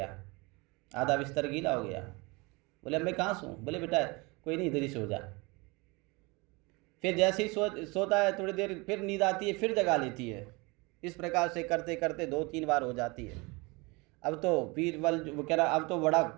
आधा बिस्तर गीला हो गया। बोले अब मैं कहाँ सोऊं? बोले बेटा कोई नहीं, इधर ही सो जा। फिर जैसे ही सोता है, थोड़ी देर फिर नींद आती है, फिर जगा लेती है। इस प्रकार से करते करते 2-3 बार हो जाती है। अब तो बीरबल वो कह रहा, अब तो बड़ा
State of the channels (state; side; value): quieter; left; 26.3 dB